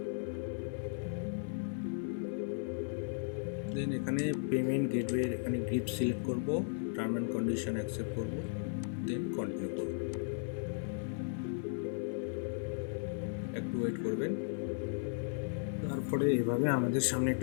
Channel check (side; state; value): right; silent; 54 dB below the other